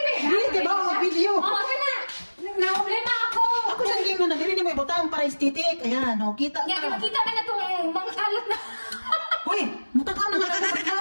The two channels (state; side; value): inverted; both; correlation -1.00